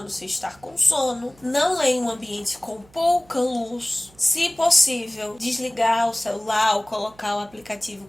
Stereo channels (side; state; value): right; noise; hum, 28 dB below the sound